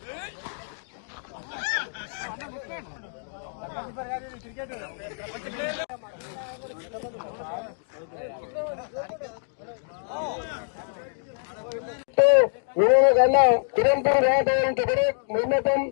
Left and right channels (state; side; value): silent; right; digital silence